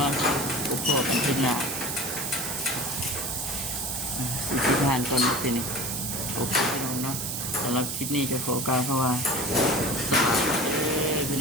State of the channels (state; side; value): noise; right; hiss, 3 dB below the sound